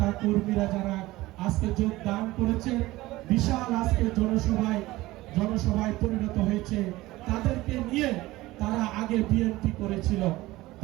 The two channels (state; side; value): quieter; left; 18.5 dB